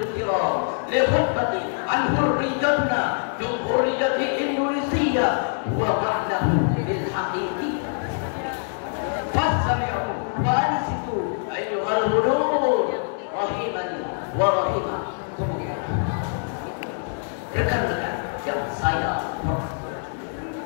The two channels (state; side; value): silent; right; 62 dB below the other